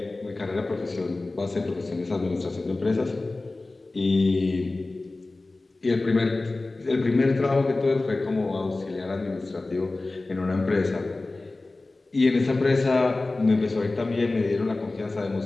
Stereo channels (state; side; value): quieter; right; 3.2 dB